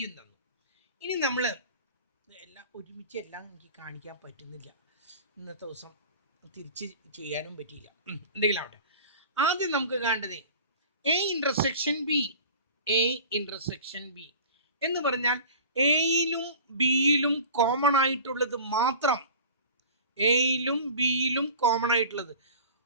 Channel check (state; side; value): inverted; both; correlation -0.40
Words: തന്നു. ഇനി നമ്മൾ എല്ലാം ഒരുമിച്ച് എല്ലാം എനിക്ക് കാണിക്കാൻ പറ്റുന്നില്ല, ഇന്നത്തെ ദിവസം തിരിച്ച് ചെയ്യാനും പറ്റിയില്ല. എന്തെങ്കിലും ആവട്ടെ. ആദ്യം നമുക്ക് കാണേണ്ടത് എ ഇന്റർസെക്ഷൻ ബി എന്ന് പറഞ്ഞാൽ എയിലും ബിയിലും കോമൺ ആയിട്ടുള്ളത് മാത്രം, എയിലും ബിയിലും കോമൺ ആയിട്ടുള്ളത്.